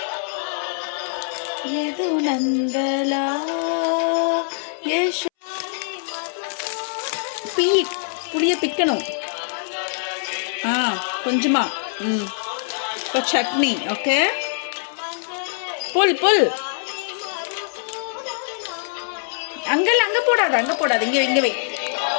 எது நந்தலா புளியை பிக்கணும். கொஞ்சமா இப்போ சட்னி. ஓகே, புல் புல் அங்கே போடாத இங்கே வை.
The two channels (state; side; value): silent; right; 63 dB below the other